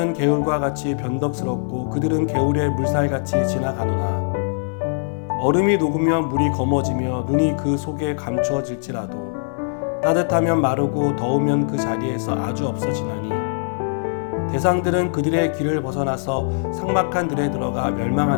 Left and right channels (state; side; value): silent; right; digital silence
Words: 개울과 같이 변덕스럽고 그들은 개울의 물살같이 지나가노나 얼음이 녹으면 물이 검어지며 눈이 그 속에 감추어질지라도 따뜻하면 마르고 더우면 그 자리에서 아주 없어지나니 대상들은 그들의 길을 벗어나서 삭막한 들에 들어가